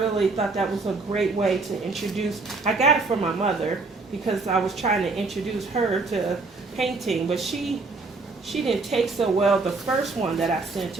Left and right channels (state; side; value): quieter; left; 3.8 dB